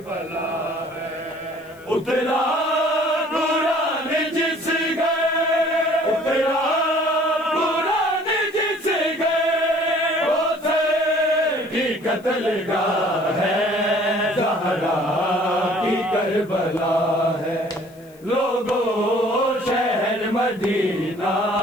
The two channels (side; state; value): left; noise; hiss, 28 dB below the sound